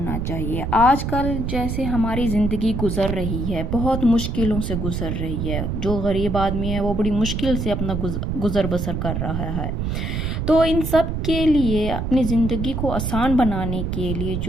چاہیے۔ آج کل جیسے ہماری زندگی گزر رہی ہے، بہت مشکلوں سے گزر رہی ہے۔ جو غریب آدمی ہے وہ بڑی مشکل سے اپنا گزر بسر کر رہا ہے۔ تو ان سب کے لیے اپنی زندگی کو آسان بنانے کے لیے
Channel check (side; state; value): right; noise; rumble, 2 dB below the sound